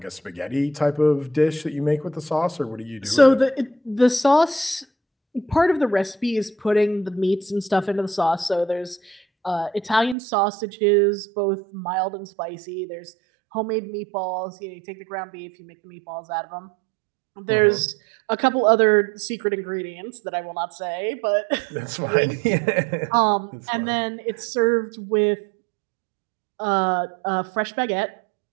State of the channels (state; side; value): drops out; left; at 10.2 s